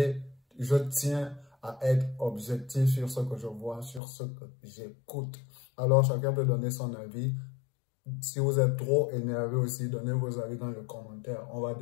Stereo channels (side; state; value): right; drops out; at 4.0 s